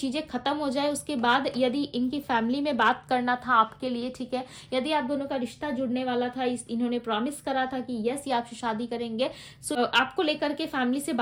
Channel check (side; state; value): both; identical; correlation 1.00